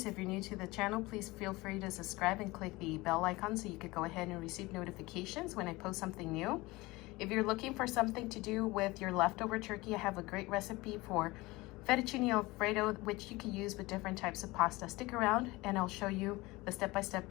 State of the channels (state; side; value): quieter; right; 21.4 dB